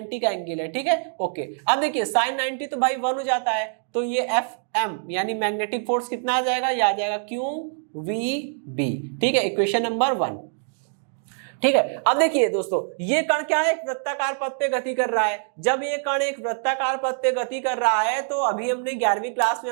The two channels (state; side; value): silent; left; digital silence